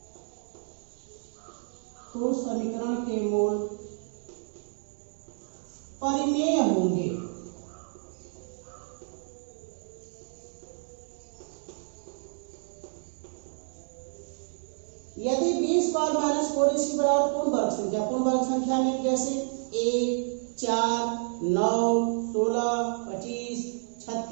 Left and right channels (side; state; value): left; silent; 58 dB below the other